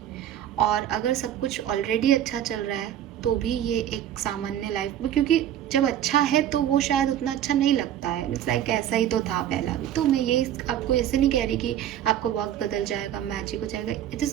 और अगर सब कुछ ऑलरेडी अच्छा चल रहा है तो भी ये एक सामान्य लाइफ में, क्योंकि जब अच्छा है तो वो शायद उतना अच्छा नहीं लगता है, इट्स लाइक ऐसा ही तो था पहला भी। तो मैं ये आपको ऐसे नहीं कह रही कि आपका वक्त बदल जाएगा, मैजिक हो जाएगा, it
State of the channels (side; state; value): left; quieter; 10.8 dB